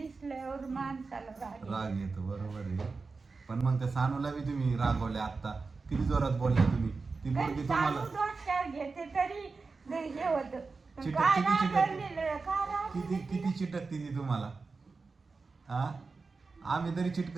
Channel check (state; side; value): quieter; left; 4.2 dB